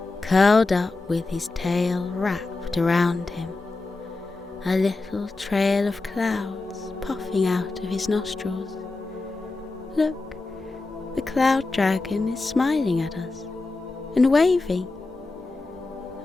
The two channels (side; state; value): right; quieter; 3.4 dB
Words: curled up with his tail wrapped around him, a little trail of clouds puffing out of his nostrils. Look, the cloud dragon is smiling at us and waving.